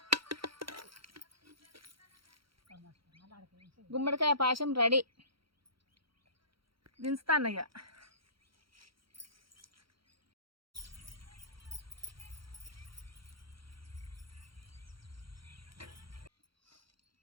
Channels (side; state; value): left; late; 0.74 ms